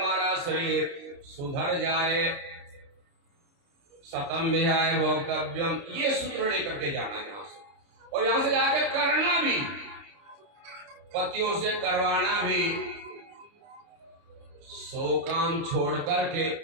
शरीर सुधर जाए। शतम विहाय भोक्तव्यम, ये सूत्र लेकर के जाना है यहां से, और यहां से जाकर करना भी, पतियों से करवाना भी। 100 काम छोड़ करके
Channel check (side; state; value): left; late; 30 ms